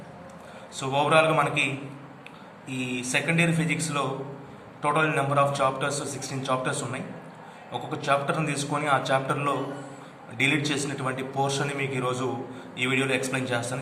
సో ఓవరాల్గా మనకి ఈ సెకండ్ ఇయర్ ఫిజిక్స్లో total number of chapters 16 chapters ఉన్నాయి. ఒక్కొక్క చాప్టర్ని తీసుకొని ఆ చాప్టర్లో డిలీట్ చేసినటువంటి పోర్షన్ని మీకు ఈరోజు ఈ వీడియోలో ఎక్స్ప్లెయిన్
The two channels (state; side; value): identical; both; correlation 1.00